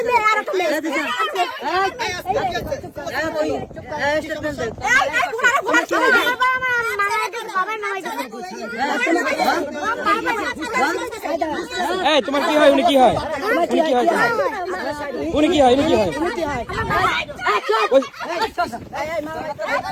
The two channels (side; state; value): both; identical; correlation 1.00